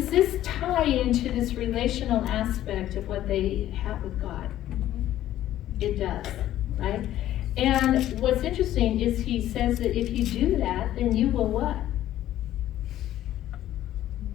this tie into this relational aspect of what they have with God? It does, right? And what's interesting is he says that if you do that, then you will what?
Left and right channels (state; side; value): quieter; right; 13.0 dB